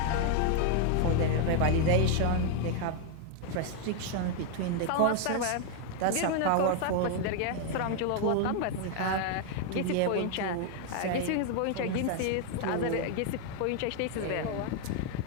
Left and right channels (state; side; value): different; both; correlation 0.00